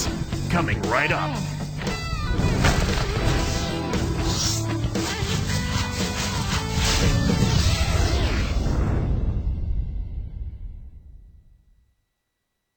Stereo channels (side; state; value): both; identical; correlation 1.00